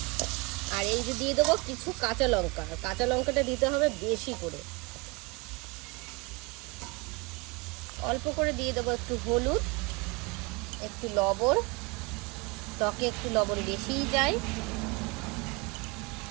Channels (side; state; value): left; quieter; 27.0 dB